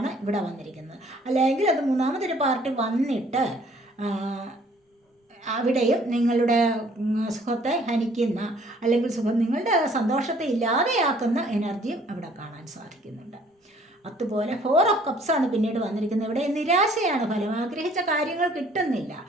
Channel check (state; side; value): normal; both; correlation 0.58